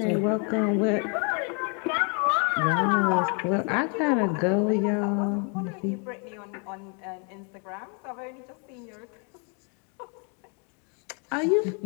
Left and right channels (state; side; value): quieter; right; 37.8 dB